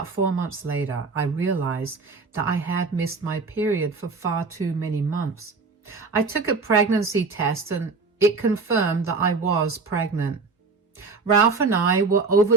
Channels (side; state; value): left; quieter; 4.3 dB